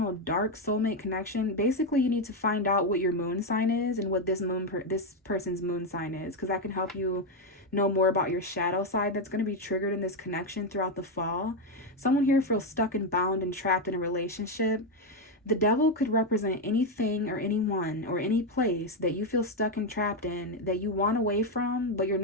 dark soulmate connection. Basically, you need to find out what your moon sign is and what this person's moon sign is, because that can help you know more about your shadow side that's going to be triggered in this connection throughout the fall. Someone here feels stuck and bound and trapped in a relationship. The devil could represent anything or anyone or any place that you feel stuck and trapped in, that you want away from, but you're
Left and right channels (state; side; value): normal; both; correlation 0.06